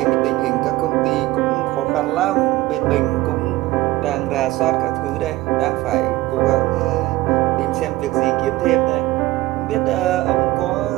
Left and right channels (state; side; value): quieter; left; 18.2 dB